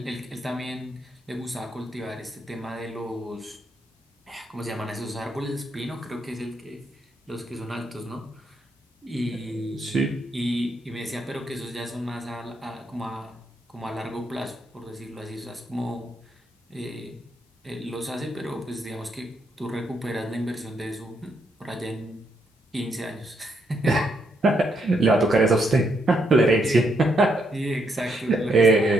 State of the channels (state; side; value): normal; both; correlation 0.77